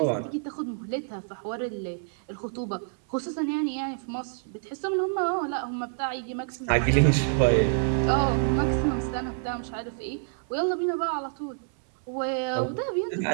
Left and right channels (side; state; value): left; silent; 60 dB below the other